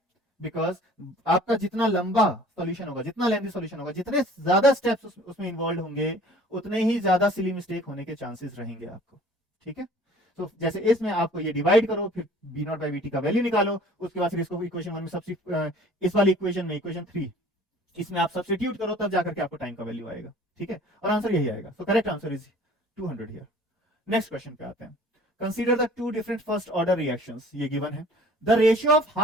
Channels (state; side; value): normal; both; correlation 0.50